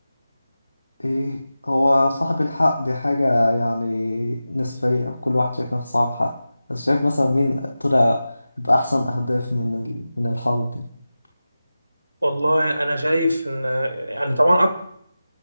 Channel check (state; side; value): inverted; both; correlation -0.95